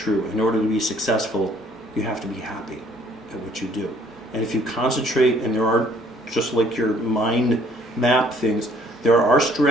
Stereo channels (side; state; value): both; normal; correlation 0.61